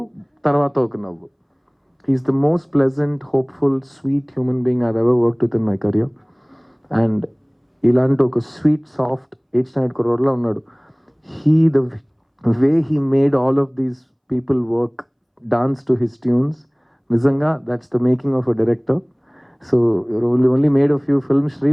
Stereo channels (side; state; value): both; identical; correlation 1.00